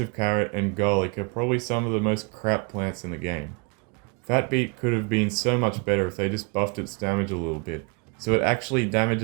carrot, and garlic are probably some of the most crap plants in the game. Fatbeet could have been so much better if they just buffed its damage a little bit, so it actually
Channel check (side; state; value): left; quieter; 32.4 dB